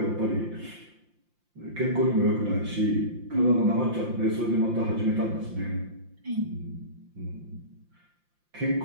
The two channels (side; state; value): left; late; 5.7 ms